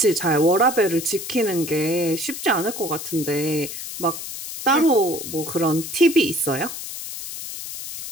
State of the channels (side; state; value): left; noise; hiss, 9 dB below the sound